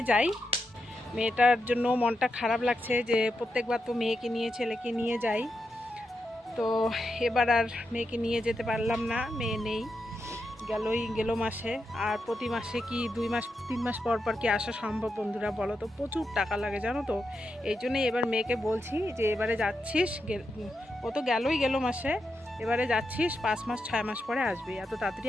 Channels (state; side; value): normal; both; correlation 0.86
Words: যাই। মেয়েটার জন্য মনটা খারাপ লাগছে যে প্রত্যেকবার তো মেয়েকে নিয়ে ছেলেকে নিয়ে যাই। তো এবার আর মেয়েকে নিয়ে যেতে পারলাম না, মেয়ে নেই, গেল মাসে। আর প্রতি মাসে কি 2 মাস 3 মাস পর পর কি আসা সম্ভব বন্ধুরা, বলো তো? প্রচুর টাকা লাগে জানো তো। এই জন্যই এবার মেয়েকে বলছি যে এবারে যাচ্ছিস, ও তো গেল মাসে, এবারে যাচ্ছিস 5 মাস 6 মাস পরে আসবি, এত তাড়াতাড়ি